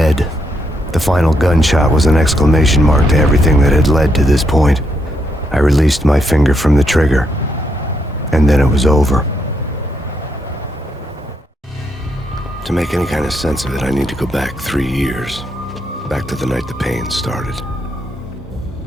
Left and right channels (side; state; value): both; normal; correlation 0.78